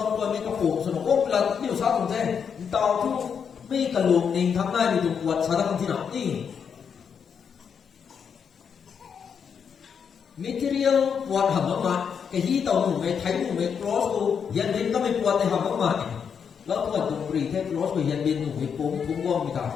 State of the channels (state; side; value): quieter; right; 7.0 dB